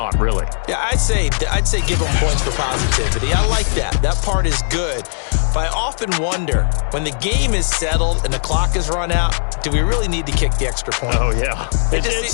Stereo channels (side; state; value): right; silent; digital silence